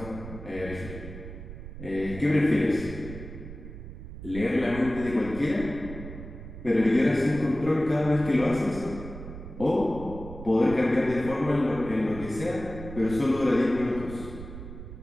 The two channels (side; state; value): right; noise; rumble, 12 dB below the sound